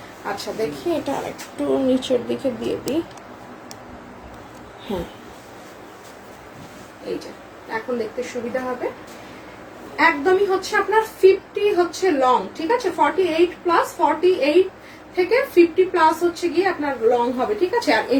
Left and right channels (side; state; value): both; identical; correlation 1.00